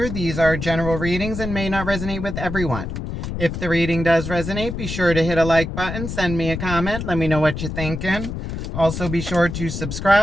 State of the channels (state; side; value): noise; left; rumble, 5 dB below the sound